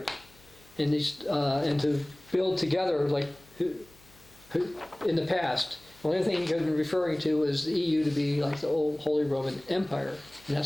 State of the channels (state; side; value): noise; left; hum, 27 dB below the sound